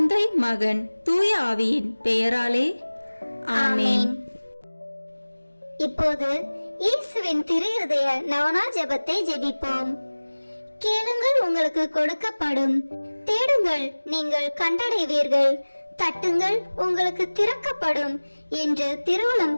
மகன், தூய ஆவியின் பெயராலே ஆமேன். இப்போது இயேசுவின் திருஇருதய நவனா ஜெபத்தை ஜெபிப்போம். கேளுங்கள், உங்களுக்கு கொடுக்கப்படும். தேடுங்கள், நீங்கள் கண்டடைவீர்கள். தட்டுங்கள், உங்களுக்கு திறக்கப்படும் என்று திருவுளம்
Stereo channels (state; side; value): inverted; both; correlation -1.00